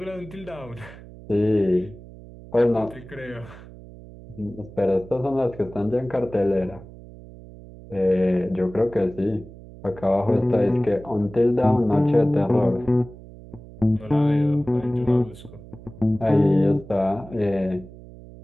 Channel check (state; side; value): noise; right; hum, 18 dB below the sound